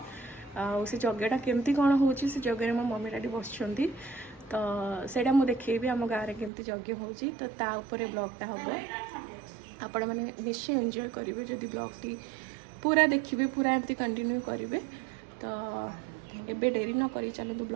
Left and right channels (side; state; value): left; drops out; at 6.5 s